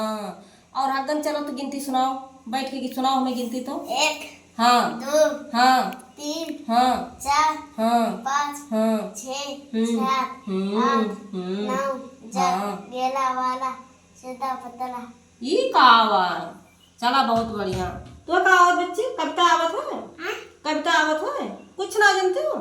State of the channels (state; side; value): identical; both; correlation 1.00